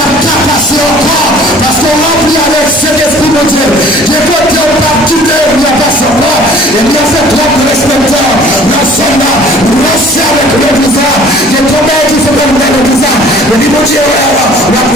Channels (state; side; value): normal; both; correlation 0.51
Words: pas passer encore. Parce qu'on remplit avec cet esprit de Dieu. Les côtés on va quitter, on n'a pas savoir. Et bien fait trop de respecteur. Nous sommes là, nous restons avec l'église. Les combats qui font comme l'église. Le niveau de Dieu, on va